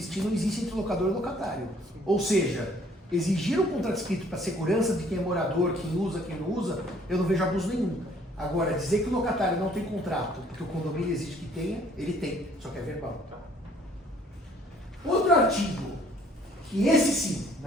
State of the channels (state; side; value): normal; both; correlation 0.60